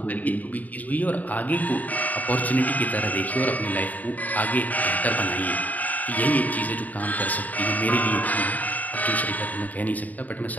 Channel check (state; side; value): late; right; 0.077 ms